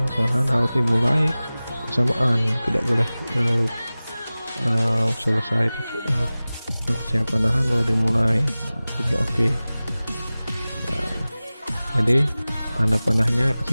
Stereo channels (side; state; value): both; inverted; correlation -0.98